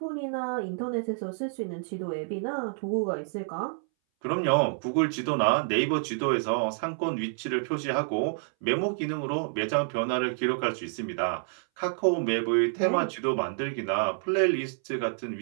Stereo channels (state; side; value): silent; left; 59 dB below the other